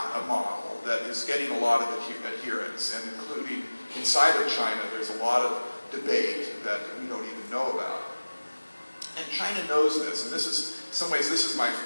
a model that is getting a lot of adherence, and including inside of China, there's a lot of debate that we don't even know about. And China knows this, and this is, in some ways, this is my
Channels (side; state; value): both; inverted; correlation -1.00